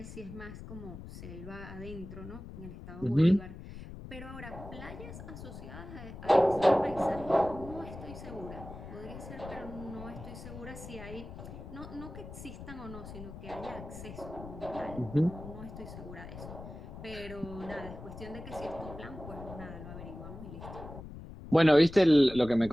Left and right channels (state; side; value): noise; left; rumble, 12 dB below the sound